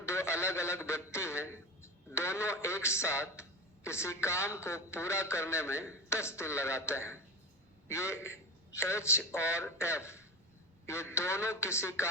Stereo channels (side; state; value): both; normal; correlation 0.24